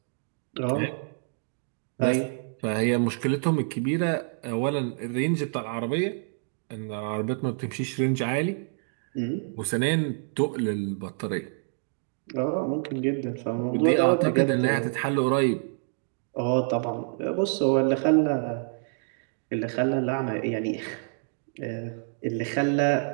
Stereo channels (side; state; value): left; silent; digital silence